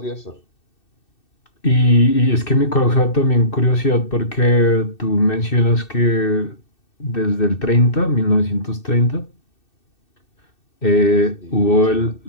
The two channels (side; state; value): right; late; 2.6 ms